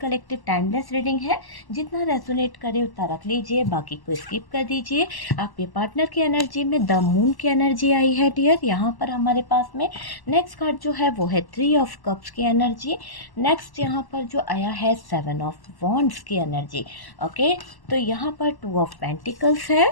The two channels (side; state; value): right; late; 1.1 ms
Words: टाइमलेस रीडिंग है। जितना रेजोनेट करे उतना रख लीजिए, बाकी को स्किप कर दीजिए। आपके पार्टनर की एनर्जी में द मून की एनर्जी आई है डियर यहाँ पर हमारे पास में। नेक्स्ट कार्ड जो है वो है थ्री ऑफ कप्स की एनर्जी। नेक्स्ट यहाँ पर जो आया है सेवन ऑफ वॉन्ड्स की एनर्जी। ओके, तो यहाँ पर टू ऑफ पेंटिकल्स है।